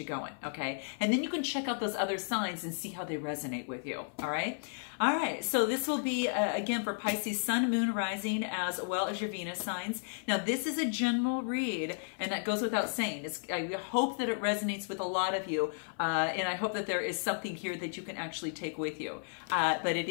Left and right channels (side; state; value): right; silent; 55 dB below the other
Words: going, okay? And then you can check out those other signs and see how they resonate with you, all right? All right, so this will be, again, for Pisces Sun, Moon, Rising, as well as your Venus signs. Now, this is a general read, and that goes without saying. I hope that it resonates with a lot of you, and I hope that there is something here that you can actually take with you. But it